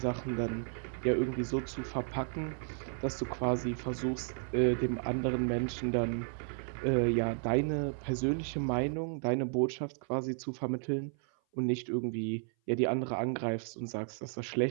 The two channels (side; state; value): left; silent; 55 dB below the other